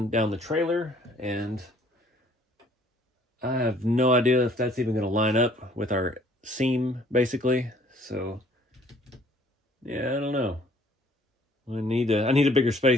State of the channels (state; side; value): normal; both; correlation 0.58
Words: down the trailer, and I have no idea if that's even going to line up with our seam, basically. So yeah, I don't know. I need a bigger